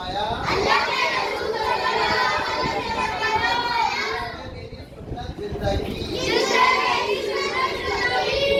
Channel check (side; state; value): both; identical; correlation 1.00